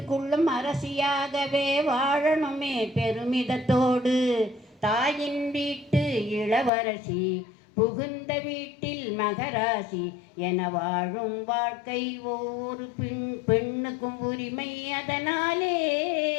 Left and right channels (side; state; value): right; drops out; at 6.7 s